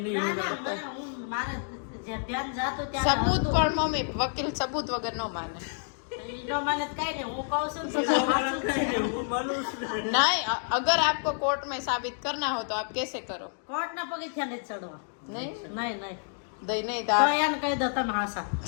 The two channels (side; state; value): right; silent; digital silence